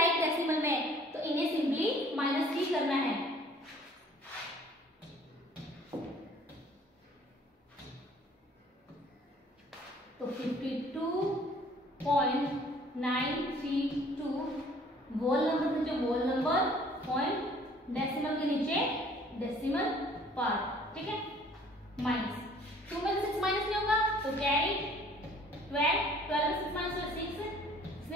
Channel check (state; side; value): normal; both; correlation 0.55